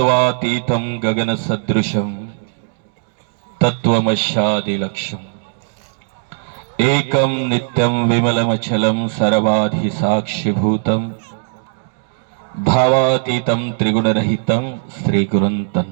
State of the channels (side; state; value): left; silent; digital silence